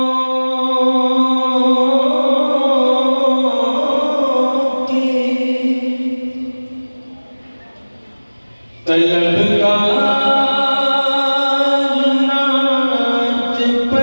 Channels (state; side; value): inverted; both; correlation -1.00